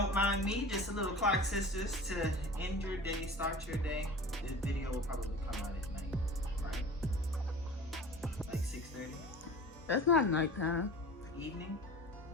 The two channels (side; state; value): both; normal; correlation 0.38